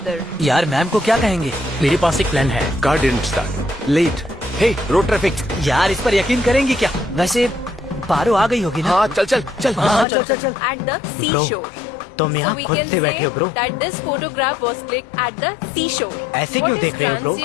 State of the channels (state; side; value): drops out; right; at 10.1 s